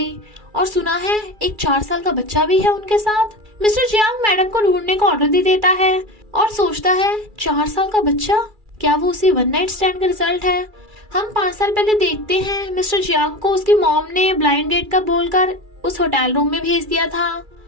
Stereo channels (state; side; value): late; left; 2.3 ms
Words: और सुना है एक 4 साल का बच्चा भी है उनके साथ। मिस्टर जियांग मैडम को ढूंढने का ऑर्डर दे देता है और सोचता है 4 साल का बच्चा, क्या वो उसी वन नाइट स्टैंड का रिजल्ट है। हम 5 साल पहले देखते हैं मिस्टर जियांग को उसकी मॉम ने ब्लाइंड डेट का बोलकर उस होटल रूम में भेज दिया था।